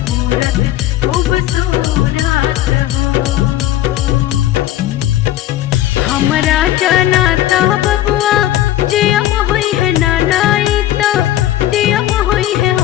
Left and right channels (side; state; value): right; quieter; 13.5 dB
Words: खूबसूरत हो। हमरा जनाता बबुआ जियम हुई है नानाई तो दियम हुई है